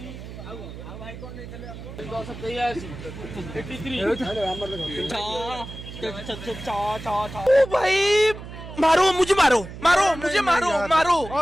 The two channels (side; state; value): right; noise; hum, 12 dB below the sound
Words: ଭାଇ କଣ ନେଇଥିଲେ 10 ओ भाई मारो मुझे मारो मारो मुझे मारो मारो